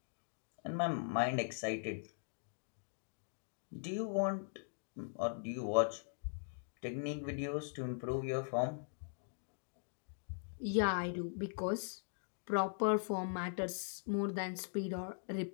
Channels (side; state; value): right; silent; digital silence